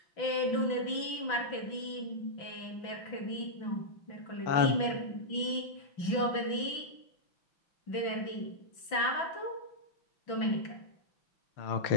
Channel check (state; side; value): late; right; 6.0 ms